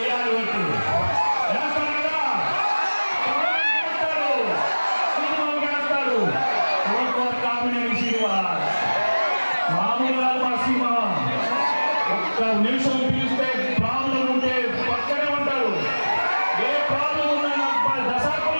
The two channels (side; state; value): both; inverted; correlation -1.00